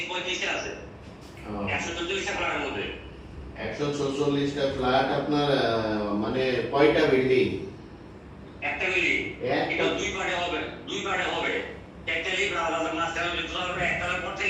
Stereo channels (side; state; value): both; identical; correlation 1.00